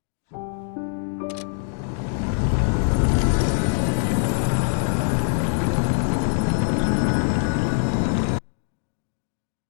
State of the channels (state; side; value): silent; right; 63 dB below the other